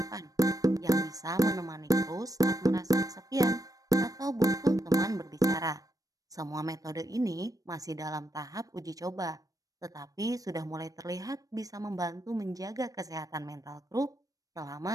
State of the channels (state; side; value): late; left; 0.17 ms